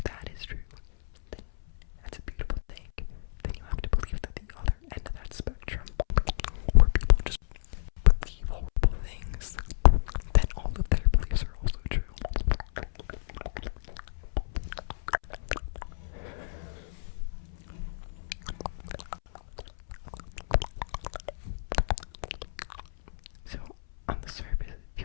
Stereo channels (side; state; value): right; silent; 58 dB below the other